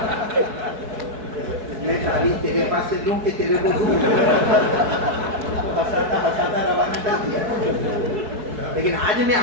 میں تعویذ تیرے پاس سے لوں کہ تیرے کو دوں. ہساتا روانہ کر دیا. لیکن آج میں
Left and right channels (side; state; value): left; late; 4.6 ms